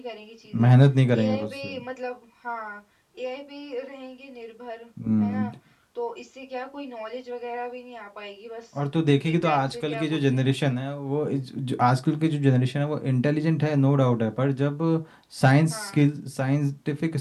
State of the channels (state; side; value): identical; both; correlation 1.00